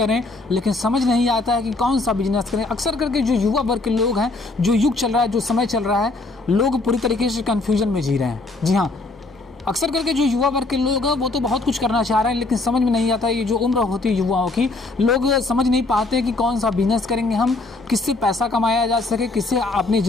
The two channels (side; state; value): right; quieter; 3.2 dB